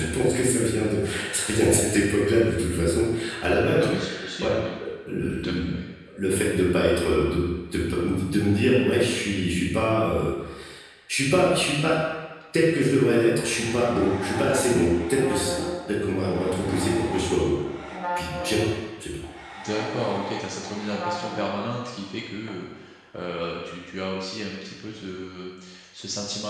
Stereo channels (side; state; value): both; identical; correlation 1.00